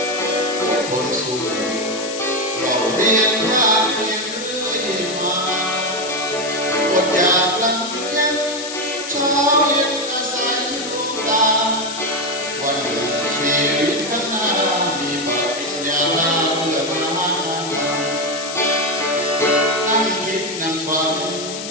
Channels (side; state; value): left; noise; hiss, 8 dB below the sound